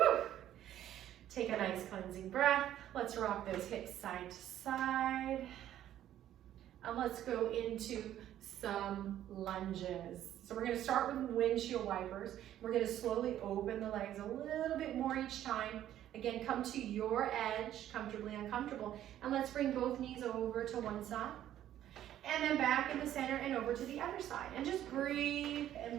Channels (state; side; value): quieter; left; 11.9 dB